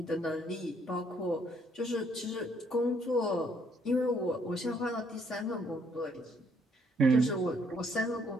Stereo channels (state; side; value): normal; both; correlation 0.68